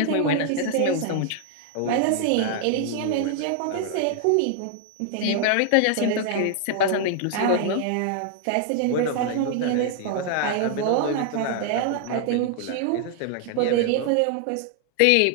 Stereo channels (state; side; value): different; both; correlation 0.00